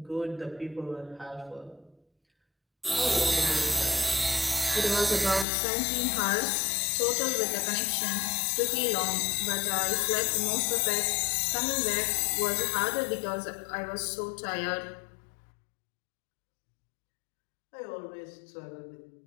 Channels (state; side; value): drops out; right; at 5.5 s